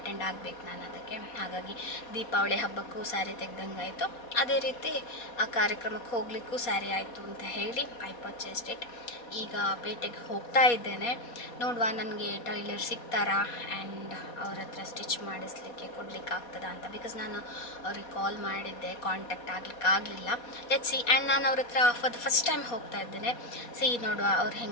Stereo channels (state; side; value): late; right; 4.2 ms